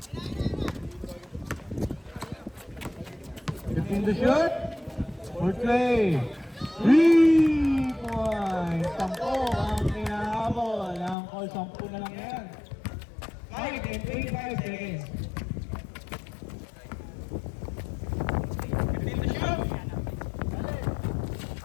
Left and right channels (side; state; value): right; drops out; at 11.2 s